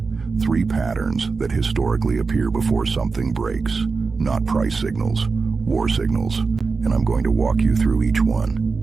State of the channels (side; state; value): left; quieter; 4.5 dB